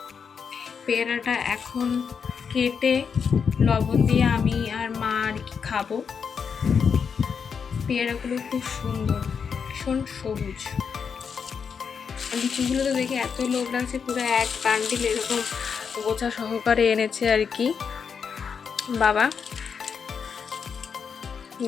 পেয়ারাটা এখন কেটে লবণ দিয়ে আমি আর মা আর কি খাবো। পেয়ারাগুলো খুব সুন্দর, ভীষণ সবুজ। লিচুগুলো তো দেখে এত লোভ লাগছে, পুরো এক বান্ডিল এরকম গোছা সহকারে এনেছে আর কি বাবা।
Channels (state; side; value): quieter; right; 6.4 dB